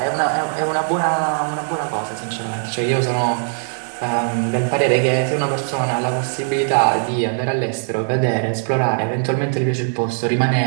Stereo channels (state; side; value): silent; left; 66 dB below the other